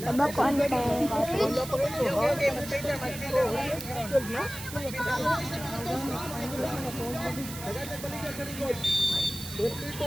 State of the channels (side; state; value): right; noise; hiss, 11 dB below the sound